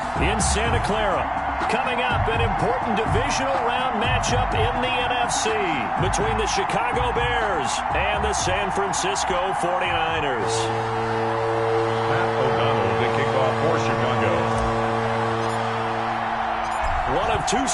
in Santa Clara. Coming up, an important divisional round matchup in the NFC between the Chicago Bears and the San Francisco 49ers. The kickoff for Chicago. One of two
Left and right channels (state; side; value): identical; both; correlation 1.00